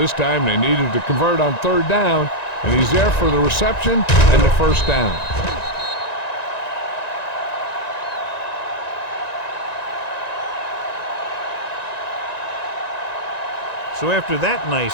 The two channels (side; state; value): right; late; 1.9 ms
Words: time they needed to convert on third down, and he's there for the reception and the first down. So after that nice